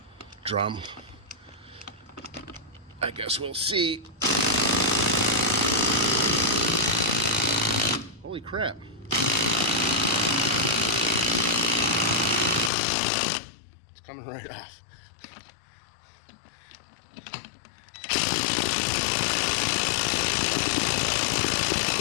drum. I guess we'll see. Holy crap. It's coming right off.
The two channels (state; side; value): drops out; right; at 12.7 s